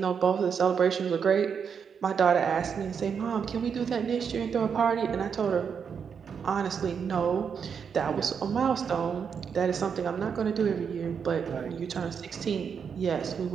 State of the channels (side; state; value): left; quieter; 6.8 dB